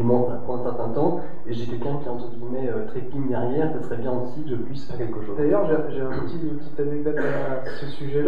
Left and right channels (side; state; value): both; identical; correlation 1.00